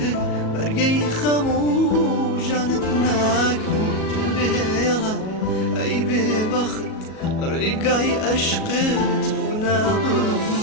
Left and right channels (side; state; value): right; late; 37 ms